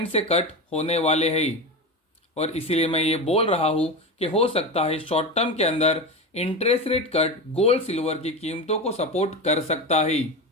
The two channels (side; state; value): both; normal; correlation 0.22